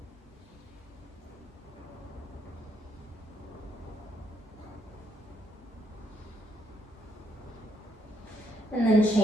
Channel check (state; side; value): normal; both; correlation 0.74